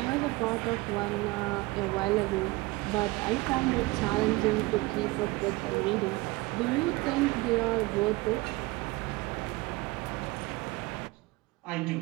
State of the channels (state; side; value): quieter; left; 21.8 dB